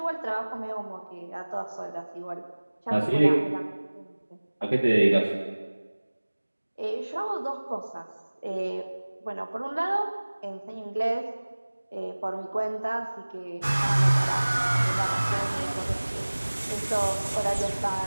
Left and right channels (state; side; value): inverted; both; correlation -1.00